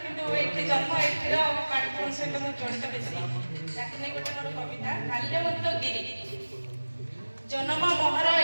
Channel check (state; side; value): inverted; both; correlation -1.00